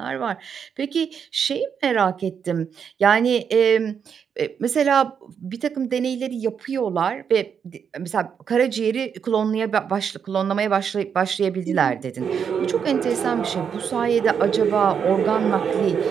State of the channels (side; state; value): left; quieter; 7.2 dB